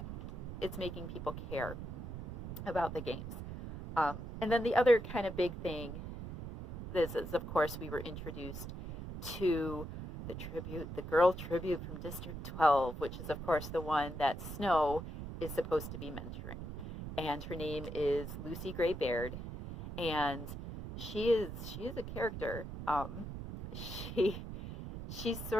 people care about the games. And then the other kind of big thing is, of course, we were introduced to the girl tribute from District 12, which is, of course, the one that Snow is supposed to be mentoring. And her name is Lucy Gray Baird, and she is a character. She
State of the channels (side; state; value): right; noise; rumble, 8 dB below the sound